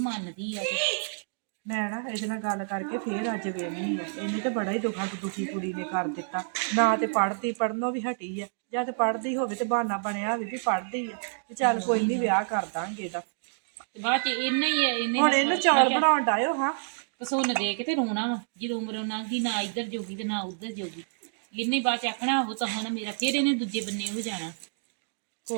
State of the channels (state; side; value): silent; left; digital silence